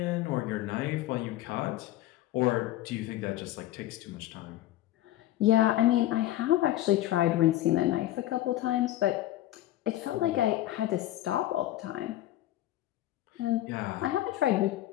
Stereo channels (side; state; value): right; quieter; 14.4 dB